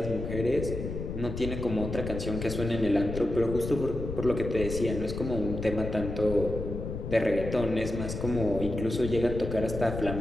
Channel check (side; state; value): left; noise; rumble, 6 dB below the sound